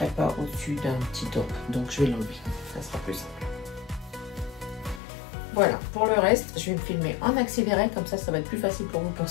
pas au-dessus d'un petit top. Donc, je vais l'enlever. Ça sera plus simple. Voilà, pour le reste, je vais me filmer en accéléré. Comme ça va être plus facile pour vous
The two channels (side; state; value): right; drops out; at 5.0 s